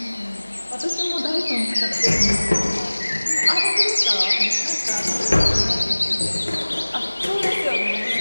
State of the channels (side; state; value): both; inverted; correlation -1.00